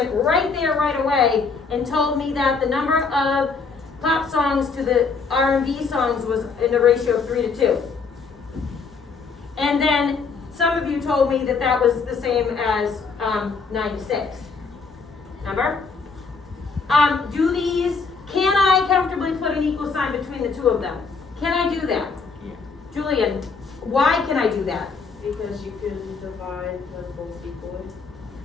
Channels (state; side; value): quieter; right; 4.8 dB